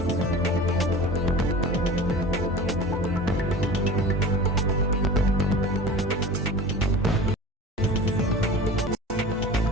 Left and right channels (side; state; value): both; normal; correlation 0.37